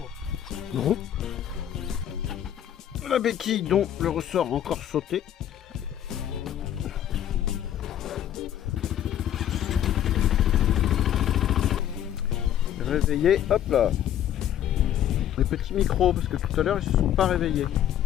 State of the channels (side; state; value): right; quieter; 10.8 dB